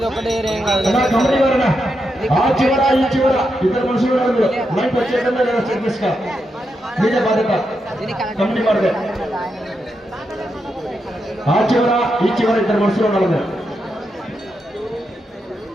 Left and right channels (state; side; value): normal; both; correlation 0.85